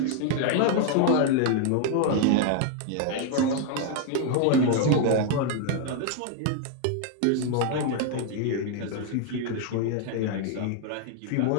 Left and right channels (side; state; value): both; different; correlation 0.00